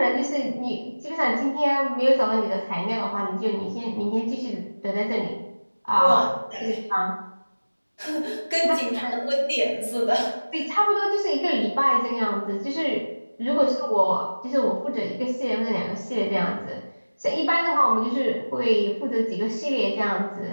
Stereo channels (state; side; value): inverted; both; correlation -1.00